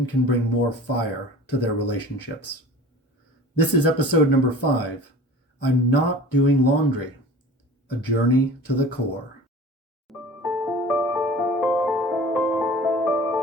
can bring more fire to their relationships. This is episode number 5, I'm Not Doing Laundry, a journey to the core.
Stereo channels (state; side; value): normal; both; correlation 0.41